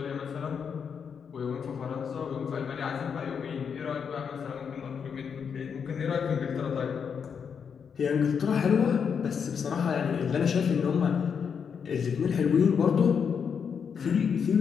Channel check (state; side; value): quieter; right; 6.8 dB